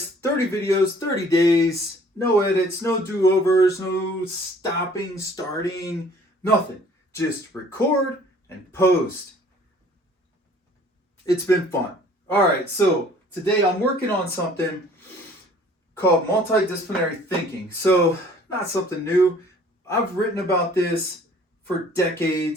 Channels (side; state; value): both; normal; correlation 0.54